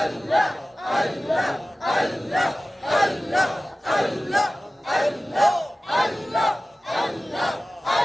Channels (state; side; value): normal; both; correlation 0.96